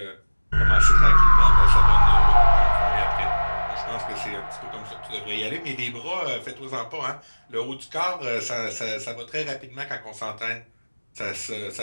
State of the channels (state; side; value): inverted; both; correlation -1.00